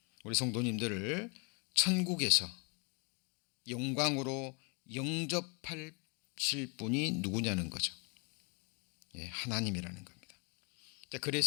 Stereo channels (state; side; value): quieter; right; 33.7 dB